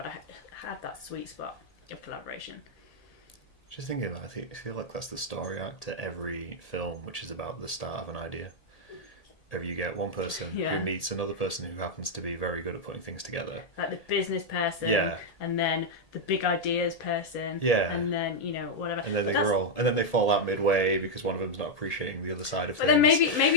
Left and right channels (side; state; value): right; late; 1.7 ms